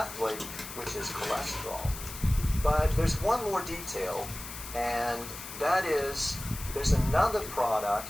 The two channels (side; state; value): left; noise; hiss, 11 dB below the sound